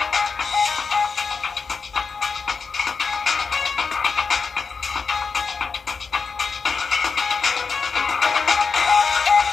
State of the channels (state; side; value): quieter; right; 5.1 dB